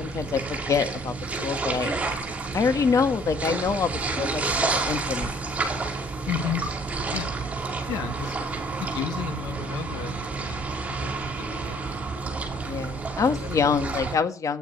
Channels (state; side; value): normal; both; correlation 0.58